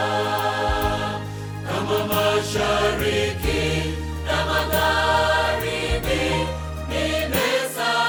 Kama mashariki na magharibi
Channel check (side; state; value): both; identical; correlation 1.00